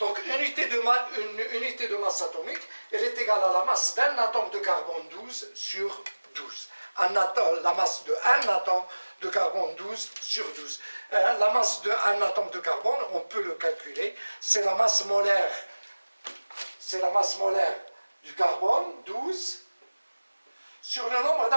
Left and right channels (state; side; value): inverted; both; correlation -1.00